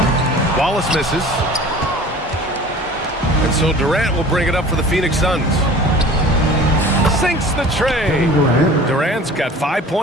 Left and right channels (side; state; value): both; normal; correlation 0.43